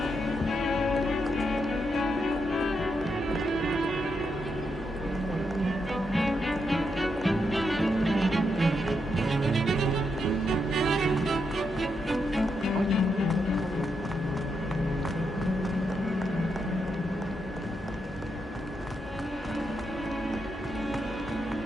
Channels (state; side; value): normal; both; correlation 0.82